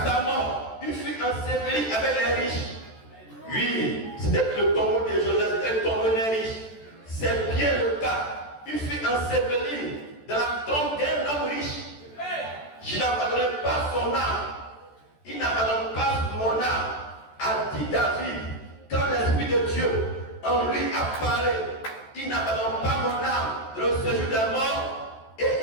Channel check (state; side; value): late; right; 14 ms